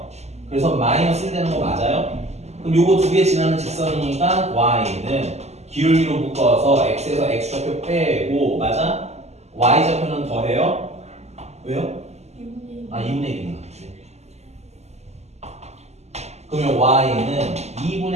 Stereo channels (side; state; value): left; late; 0.32 ms